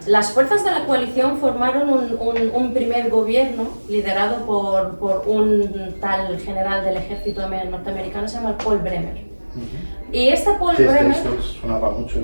las fuerzas de la coalición formaron un primer gobierno liderado por un tal general del ejército norteamericano, se llama Paul Bremer. Y este Paul Bremer... sonaba mucho.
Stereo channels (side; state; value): both; inverted; correlation -1.00